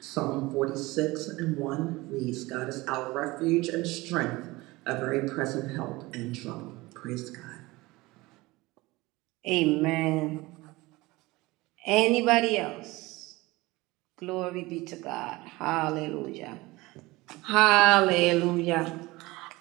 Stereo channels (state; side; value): quieter; left; 21.1 dB